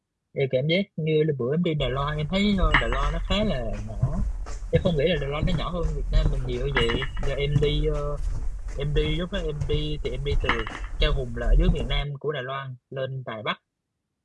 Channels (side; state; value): both; identical; correlation 1.00